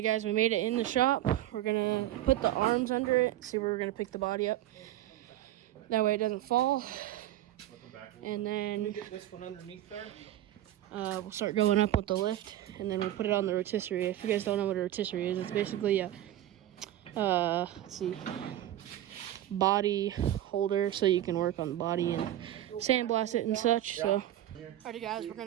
guys, we made it in the shop. we're gonna put the arms under it, see where we're gonna pick the body up. That way it doesn't fall. And then get this one underneath there. We'll start going up with the lift, and then we'll put it on the rotisserie. If you guys don't know what a rotisserie is, it's basically a let's see, body holder, so you can work on the body and sandblast it and such. So, alrighty guys, we're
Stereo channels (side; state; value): left; quieter; 13.5 dB